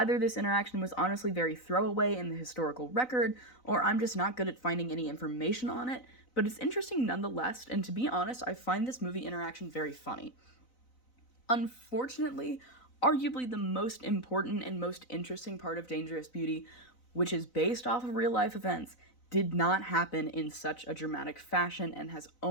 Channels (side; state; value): right; late; 4.0 ms